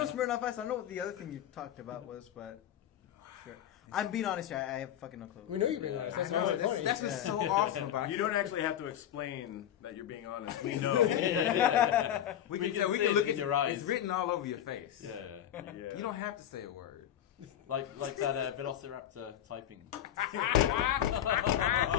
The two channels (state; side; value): quieter; right; 10.8 dB